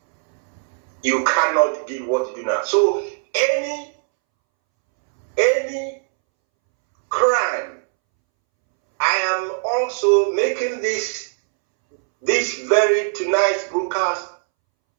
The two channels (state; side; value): silent; left; 65 dB below the other